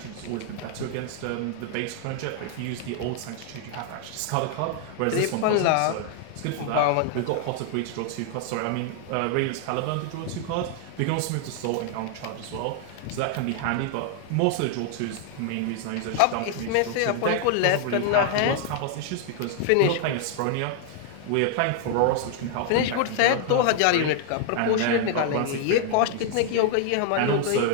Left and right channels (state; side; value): different; both; correlation 0.00